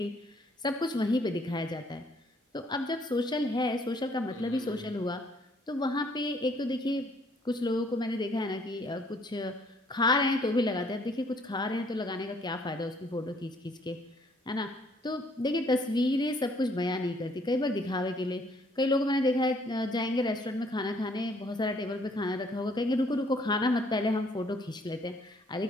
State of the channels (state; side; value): normal; both; correlation 0.64